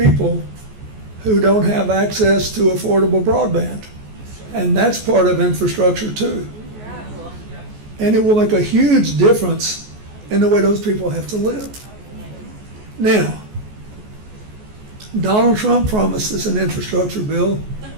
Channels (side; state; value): left; late; 14 ms